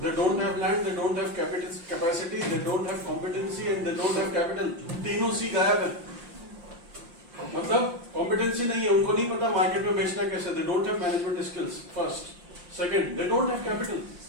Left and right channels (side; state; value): left; late; 5.7 ms